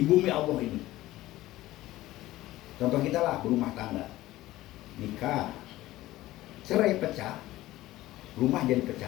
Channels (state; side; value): quieter; right; 16.5 dB